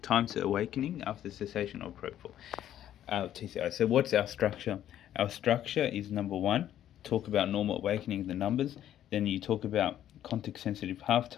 time to awakening after cessation of propofol. TCI. So what's our structure? Our structure is number one, talk about normal awakening, the numbers. Then you talk about context sensitive half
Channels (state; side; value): quieter; right; 11.4 dB